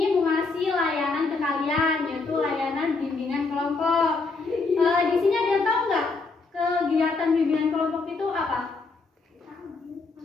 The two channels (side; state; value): right; quieter; 4.0 dB